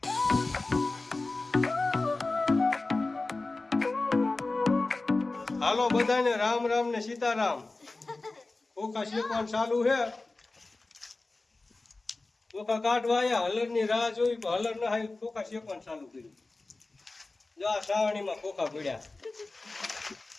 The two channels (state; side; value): quieter; right; 3.3 dB